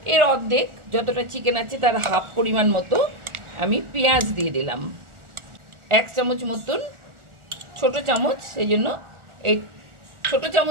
এর অর্ধেক, যতটা চিকেন আছে তার হাফ পরিমাণ মতো আমি পেঁয়াজ দিয়ে দিলাম। 1 চামচ মতন, ছোট চামচ, সেই জন্য এই ছোট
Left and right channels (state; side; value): late; left; 1.4 ms